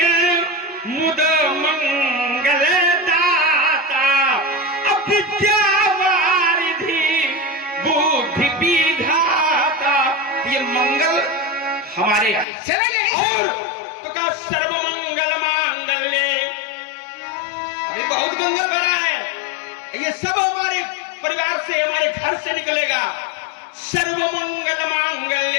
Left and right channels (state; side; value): drops out; right; at 12.5 s